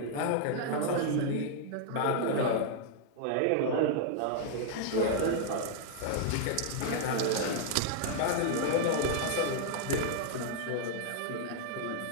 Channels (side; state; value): both; different; correlation 0.00